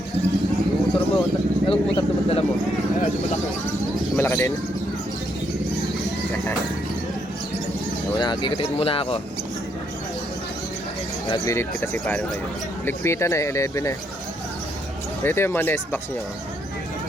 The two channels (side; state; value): both; normal; correlation 0.74